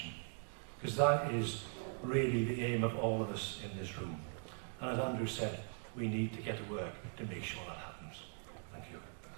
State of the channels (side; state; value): left; silent; 51 dB below the other